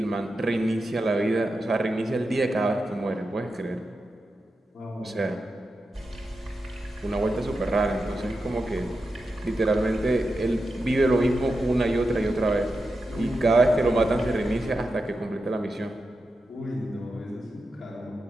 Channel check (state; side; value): normal; both; correlation 0.89